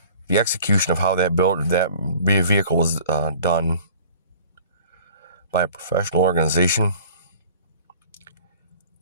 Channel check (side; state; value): both; inverted; correlation -0.48